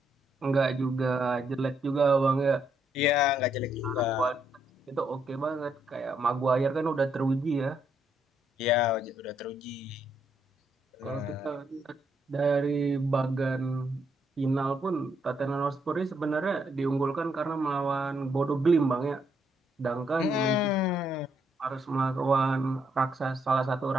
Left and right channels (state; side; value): normal; both; correlation 0.75